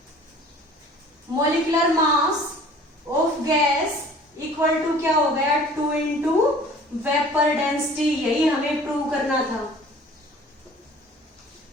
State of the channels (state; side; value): normal; both; correlation 0.49